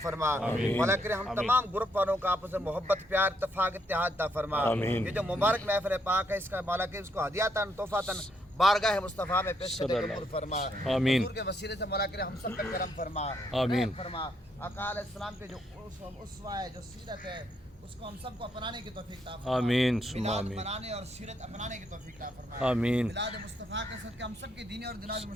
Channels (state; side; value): normal; both; correlation 0.75